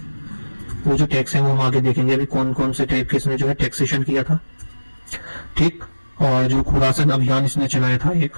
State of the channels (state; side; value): inverted; both; correlation -1.00